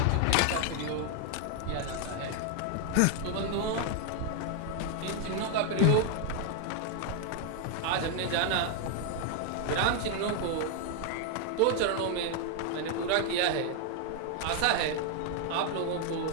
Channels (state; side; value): different; both; correlation 0.00